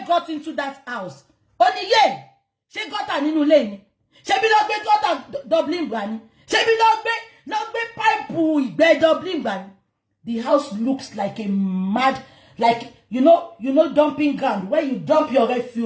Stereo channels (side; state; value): both; identical; correlation 1.00